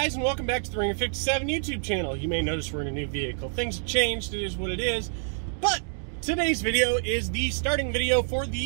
and welcome back to the Ringer 57 YouTube channel. You may notice we're in a new vehicle. Things have changed, it is what it is. But today's video is the starting video for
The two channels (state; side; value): silent; left; digital silence